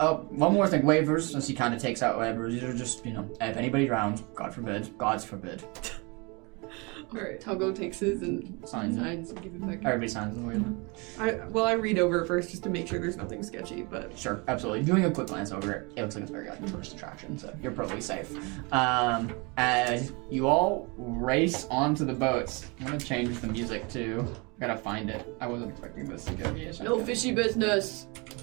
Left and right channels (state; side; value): quieter; left; 29.1 dB